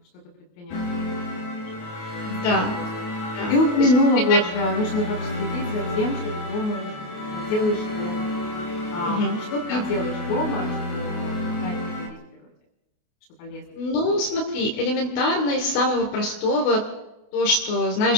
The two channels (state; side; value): late; right; 28 ms